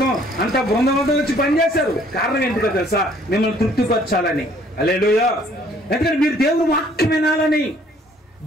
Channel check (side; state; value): both; normal; correlation 0.60